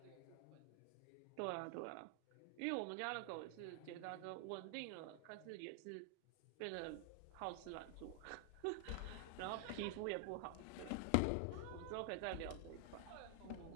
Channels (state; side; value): different; both; correlation 0.00